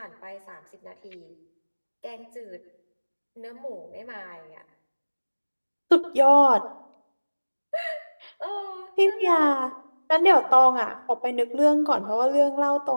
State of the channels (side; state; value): both; inverted; correlation -1.00